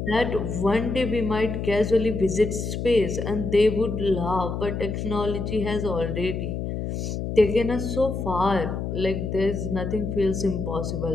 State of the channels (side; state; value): left; noise; hum, 4 dB below the sound